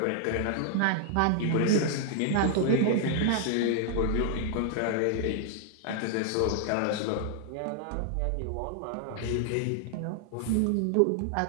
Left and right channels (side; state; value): both; different; correlation 0.00